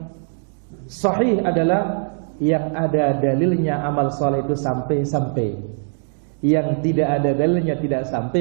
sahih adalah yang ada dalilnya amal saleh itu sampai. Yang tidak ada dalilnya tidak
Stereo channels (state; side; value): silent; left; 61 dB below the other